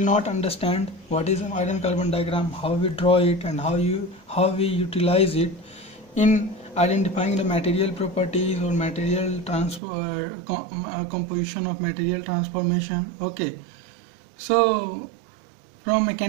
not understand what is an iron carbon diagram, how we draw it and how we utilize it in identifying the material properties or material composition of material transformation. Okay, so from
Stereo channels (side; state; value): left; drops out; at 9.8 s